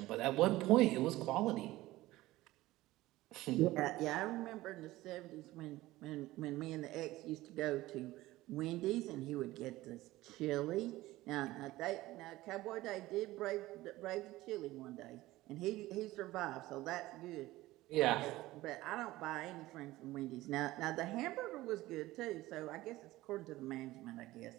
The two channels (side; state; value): left; quieter; 17.5 dB